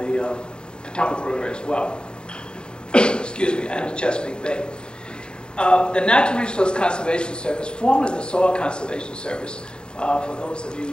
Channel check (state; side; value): late; right; 0.049 ms